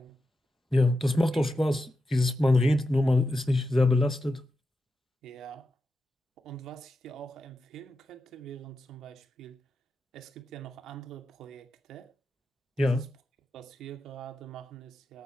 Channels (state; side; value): normal; both; correlation 0.89